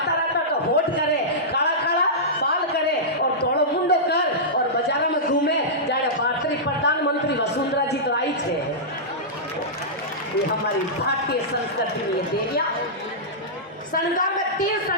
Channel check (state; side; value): normal; both; correlation -0.14